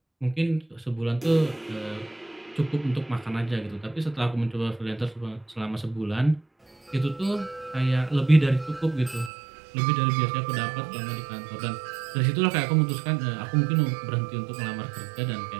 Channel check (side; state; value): left; drops out; at 9.3 s